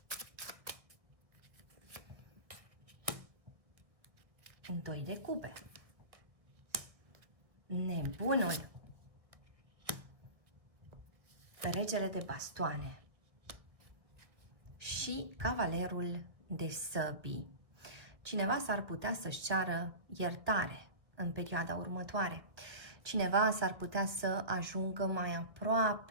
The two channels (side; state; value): left; late; 1.3 ms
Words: un 2 de cupe, nebunul, regele de bastoane și cavalerul de săbii. Cineva s-ar putea să-și ceară iertare în perioada următoare. Cineva s-ar putea să ajungă mai